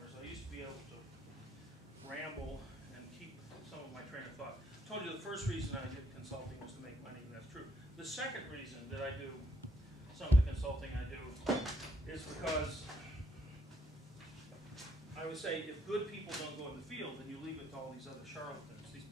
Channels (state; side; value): normal; both; correlation 0.72